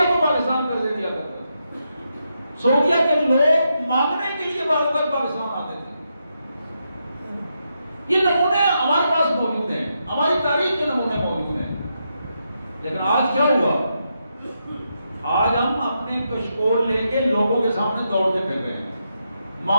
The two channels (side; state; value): both; inverted; correlation -0.83